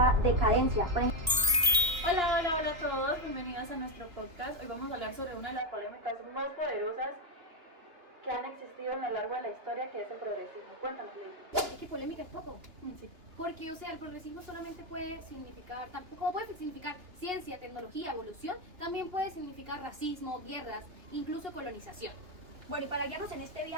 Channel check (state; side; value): late; left; 2.9 ms